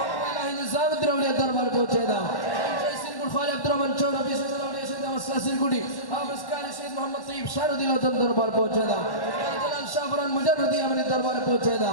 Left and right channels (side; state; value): right; late; 1.1 ms